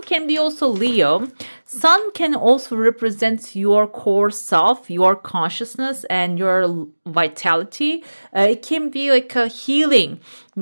can be also Leo. Sun can also represent your core self, your consciousness, and your vitality. It can be like a healing,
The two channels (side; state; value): both; inverted; correlation -1.00